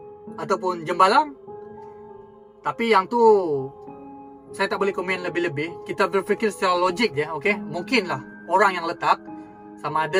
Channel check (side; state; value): both; identical; correlation 1.00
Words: ataupun jembalang. Tapi yang tu saya tak boleh komen lebih-lebih. Kita berfikir secara logik je, okey? Mungkinlah orang yang letak, sama